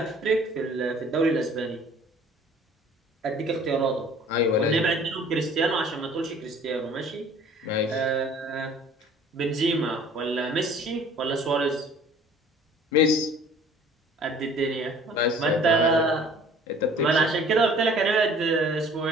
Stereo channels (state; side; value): normal; both; correlation 0.51